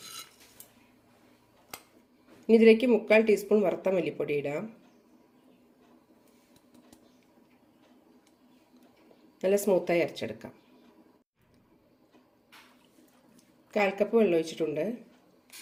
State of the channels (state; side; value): identical; both; correlation 1.00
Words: ഇനി ഇതിലേക്ക് 3/4 ടീസ്പൂൺ വറുത്ത മല്ലിപ്പൊടി ഇടാം. നല്ല സ്മൂത്തായി അരച്ചെടുക്കാം. 1/4 കപ്പ് വെള്ളം ഒഴിച്ചിട്ടുണ്ട്.